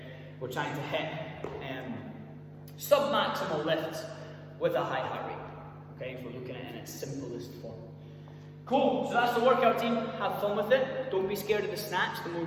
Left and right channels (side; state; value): both; identical; correlation 1.00